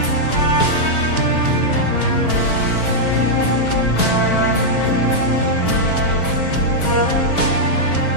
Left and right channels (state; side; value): late; right; 4.8 ms